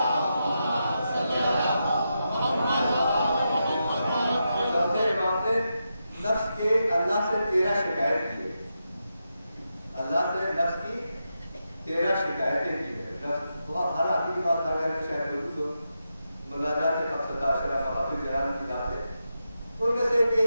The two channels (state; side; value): inverted; both; correlation -0.87